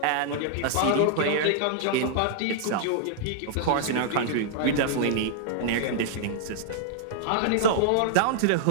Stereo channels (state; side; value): different; both; correlation -0.01